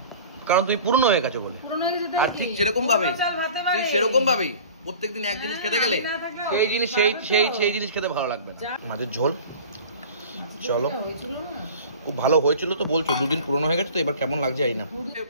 কারণ তুমি পূর্ণ হয়ে গেছো বলে। আর ঠিক সেরকম ভাবেই প্রত্যেকদিন এক জিনিস খেতে গেলে সেই জিনিস সেই জিনিস খেতে ভালো লাগবে না। মাছের ঝোল চলো খুব ভালো হয়েছিল তো বলছো, দুদিন পুরনো হয়ে গেছে তো এবার কেমন লাগছে এই না।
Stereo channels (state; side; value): inverted; both; correlation -0.41